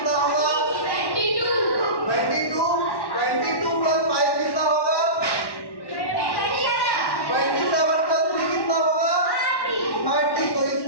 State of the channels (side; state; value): right; late; 1.1 ms